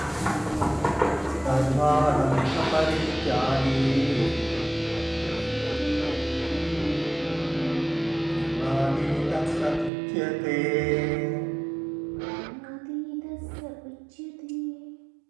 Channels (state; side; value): drops out; left; at 9.9 s